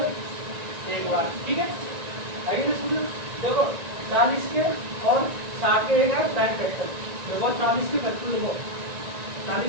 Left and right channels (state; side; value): late; left; 1.9 ms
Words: 1 बार। ठीक है, आगे ना सुनो। देखो 40 के और 60 के एक प्राइम फैक्टर। देखो 40 के फैक्टर देखो,